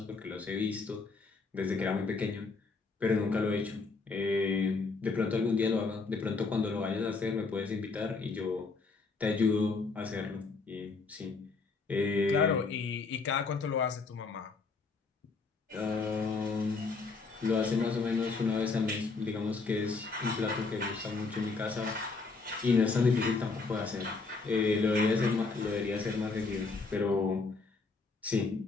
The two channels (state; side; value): quieter; right; 4.2 dB